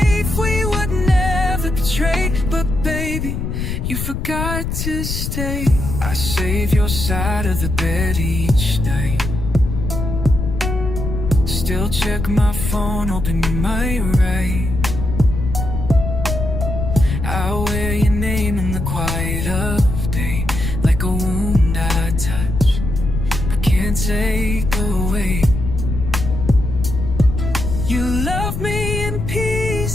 we would never betray, but baby, you forgot to stay. I save your side of the bed each night, still check my phone, hoping you might write. I wear your name in the quiet of day, like a wound I touch, but can't take away. You love me in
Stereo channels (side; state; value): left; noise; rumble, 3 dB below the sound